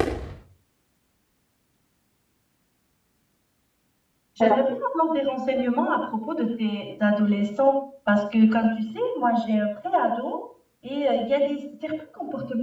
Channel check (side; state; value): both; identical; correlation 1.00